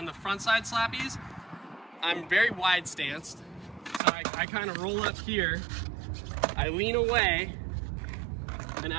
the front side Slappies, I'm very wide stanced. So I kind of roll up here, I lean away, and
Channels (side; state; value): left; drops out; at 4.0 s